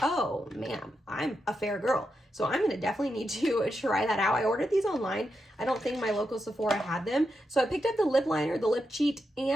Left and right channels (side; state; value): both; normal; correlation 0.86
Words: oh man, I'm a fair girl. So I'm gonna definitely need to try that out. I ordered these online. I don't think my local Sephora had them. So I picked up the lip liner, the lip cheat,